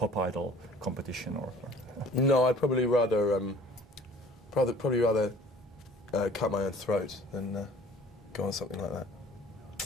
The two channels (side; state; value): both; normal; correlation 0.50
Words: idol competition, or? No, I'd probably rather cut my own throat than go on something like that.